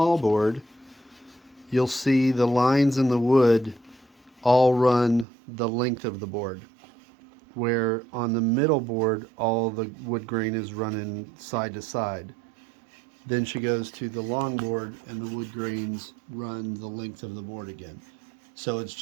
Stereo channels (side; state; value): left; drops out; at 5.2 s